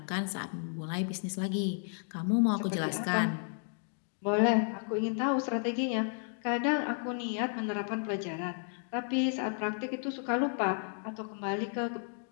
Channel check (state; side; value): silent; right; 56 dB below the other